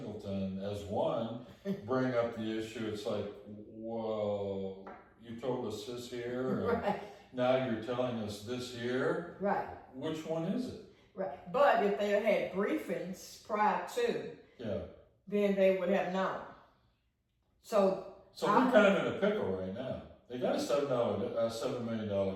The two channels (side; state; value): both; identical; correlation 1.00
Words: as one, bring up the issue. It's like, well, you told us this here, and right. now you're telling us this here. Right. Which one is it? Right. But if they had briefings prior to, then they would have known. So we're kind of in a pickle right now. They got a $7 million